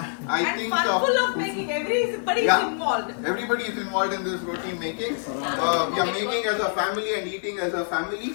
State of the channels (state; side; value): silent; right; digital silence